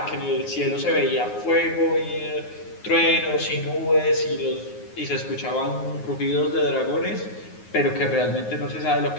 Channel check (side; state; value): right; late; 9.5 ms